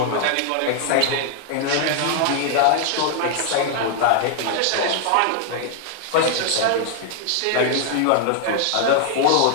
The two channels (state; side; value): different; both; correlation 0.00